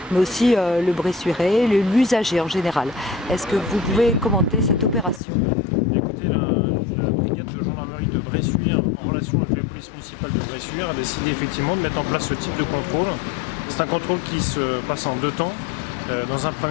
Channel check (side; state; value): right; drops out; at 5.2 s